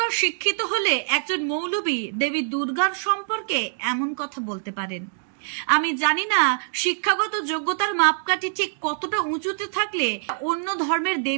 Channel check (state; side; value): silent; left; digital silence